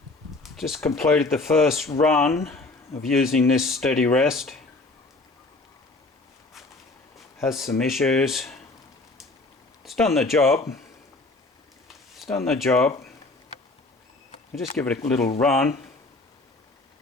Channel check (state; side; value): quieter; right; 3.2 dB